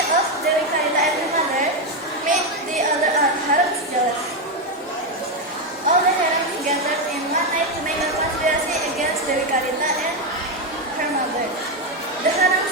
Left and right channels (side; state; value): both; normal; correlation 0.07